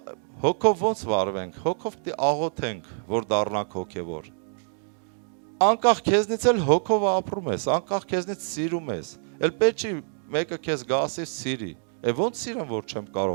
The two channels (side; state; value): left; silent; 61 dB below the other